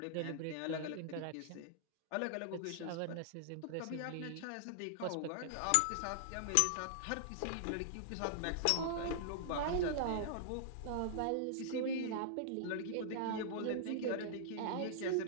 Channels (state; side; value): different; both; correlation -0.01